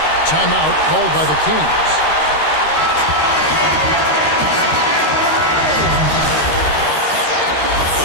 Timeout called by the Kings.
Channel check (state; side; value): late; right; 13 ms